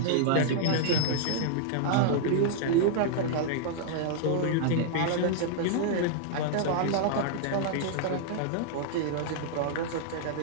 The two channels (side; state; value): both; different; correlation -0.01